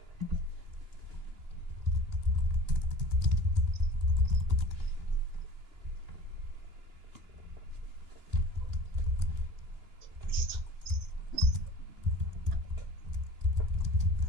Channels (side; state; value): left; late; 2.9 ms